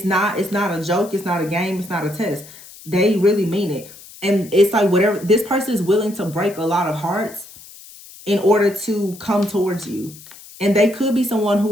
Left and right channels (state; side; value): noise; left; hiss, 19 dB below the sound